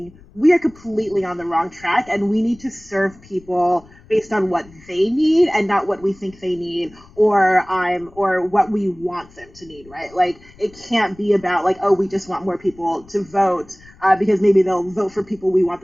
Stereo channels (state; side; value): noise; left; rumble, 25 dB below the sound